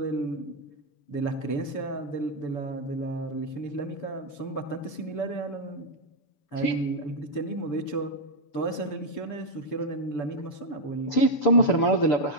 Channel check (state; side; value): late; right; 7.0 ms